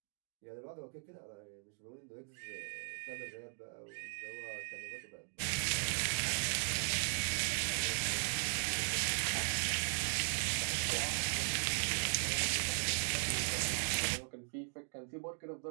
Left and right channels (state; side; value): silent; left; digital silence